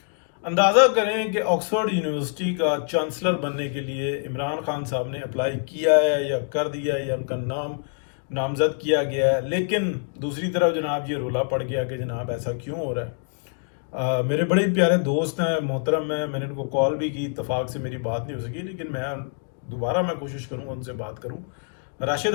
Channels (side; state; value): right; silent; 62 dB below the other